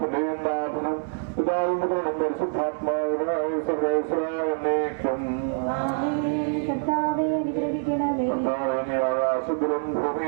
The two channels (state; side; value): silent; left; digital silence